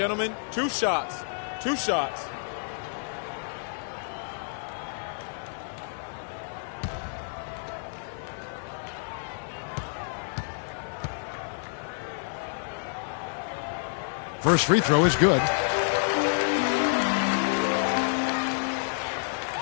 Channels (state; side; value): silent; right; 59 dB below the other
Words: 2 shots. 2 shots. First free throw is good.